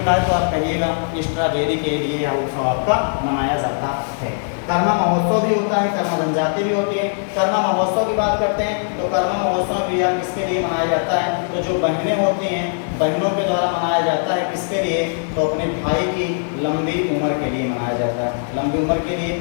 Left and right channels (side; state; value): right; silent; digital silence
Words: तो आप कहिएगा स्ट्रॉबेरी के लिए यह उत्सव आपका मनाया जाता है। कर्मा महोत्सव भी होता है, कर्मा जनजाति भी होती है। कर्मा महोत्सव की बात करते हैं तो कर्मा महोत्सव भी किसके लिए मनाया जाता है, तो जो बहनें होती हैं बहनों के द्वारा मनाया जाता है, किसके लिए, तो अपने भाई की लंबी उम्र के लिए मनाया जाता है। लंबी उम्र के लिए